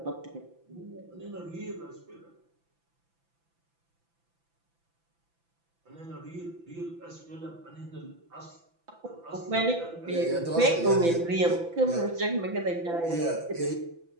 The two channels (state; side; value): late; left; 5.9 ms